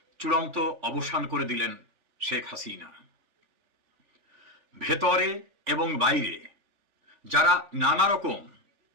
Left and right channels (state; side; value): late; left; 3.5 ms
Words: চূড়ান্ত অবসান করে দিলেন শেখ হাসিনা। ভেতরে এবং বাইরে যারা নানা রকম